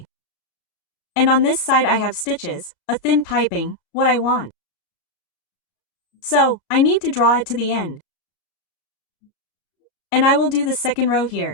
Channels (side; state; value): right; late; 33 ms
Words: And on this side I have stitches, a thin piping, what I want. So, I need to draw it to the end. And I will do the second row